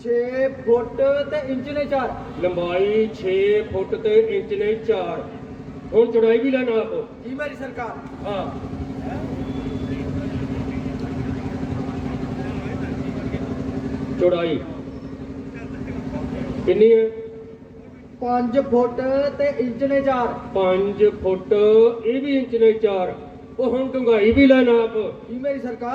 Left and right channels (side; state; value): both; identical; correlation 1.00